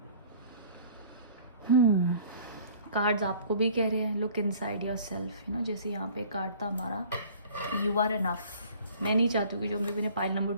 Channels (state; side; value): inverted; both; correlation -0.50